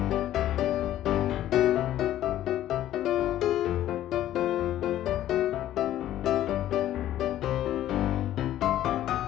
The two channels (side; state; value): right; quieter; 12.8 dB